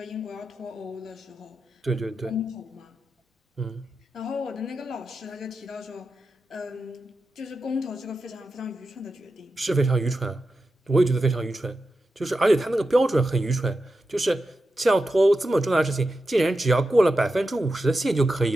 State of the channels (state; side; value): normal; both; correlation 0.90